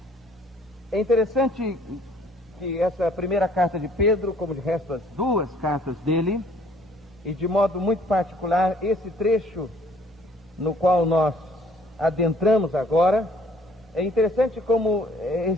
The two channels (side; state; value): both; normal; correlation 0.59